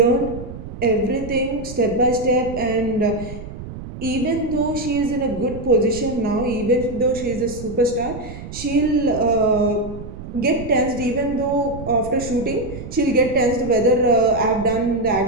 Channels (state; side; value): noise; right; rumble, 11 dB below the sound